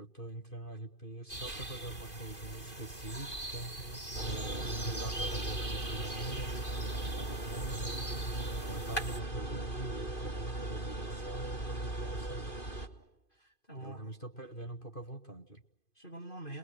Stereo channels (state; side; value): late; right; 2.5 ms